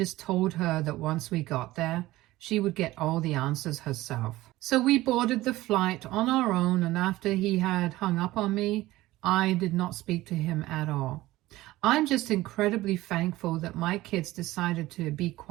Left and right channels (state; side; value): quieter; left; 17.4 dB